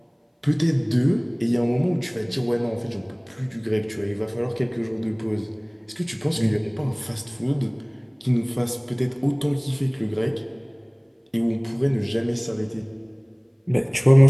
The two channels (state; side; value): identical; both; correlation 1.00